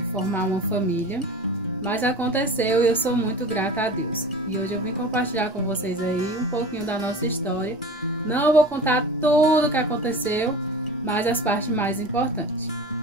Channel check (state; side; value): normal; both; correlation 0.35